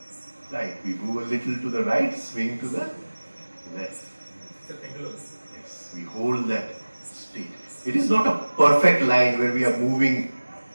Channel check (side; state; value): both; inverted; correlation -1.00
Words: right. We move a little to the right, swing to the left. Yes, we hold that state. It is not a perfect line where we are moving